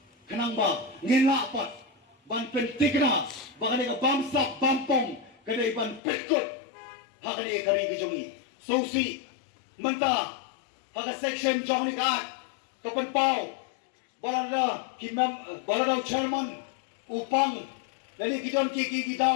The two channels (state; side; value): drops out; right; at 6.0 s